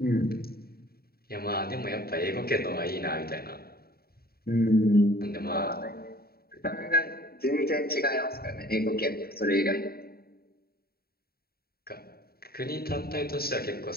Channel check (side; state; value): right; late; 0.45 ms